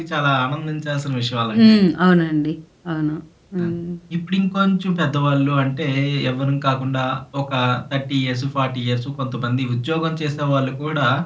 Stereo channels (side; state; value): both; identical; correlation 1.00